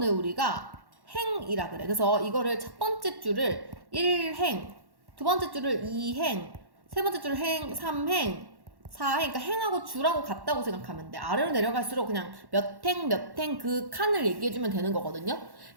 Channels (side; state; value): left; late; 1.1 ms